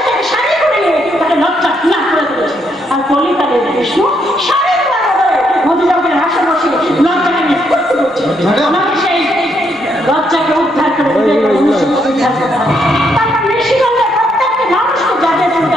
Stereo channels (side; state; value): both; normal; correlation 0.75